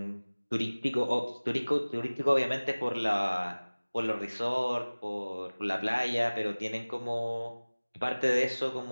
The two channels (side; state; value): both; inverted; correlation -1.00